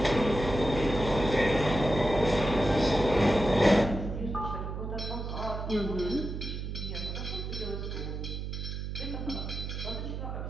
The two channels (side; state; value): right; noise; hum, 5 dB below the sound